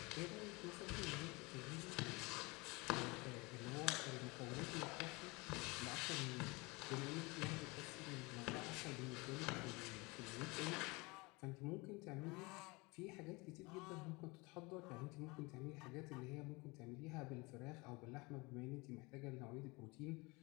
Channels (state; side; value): quieter; right; 25.6 dB